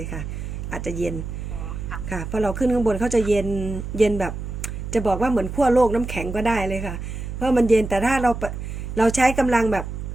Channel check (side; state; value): right; noise; hum, 7 dB below the sound